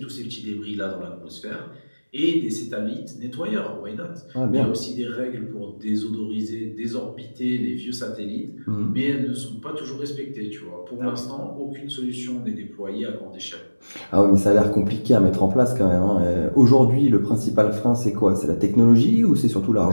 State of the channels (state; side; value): inverted; both; correlation -1.00